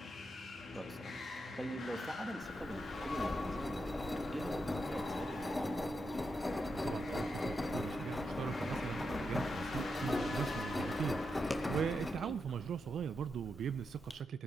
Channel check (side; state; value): both; normal; correlation 0.85